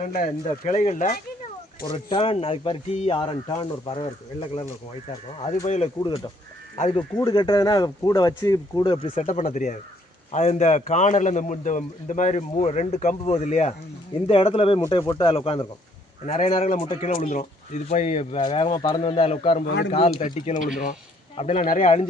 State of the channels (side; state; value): both; normal; correlation 0.66